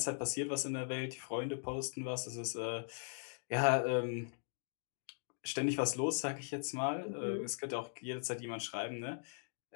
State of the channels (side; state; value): right; silent; digital silence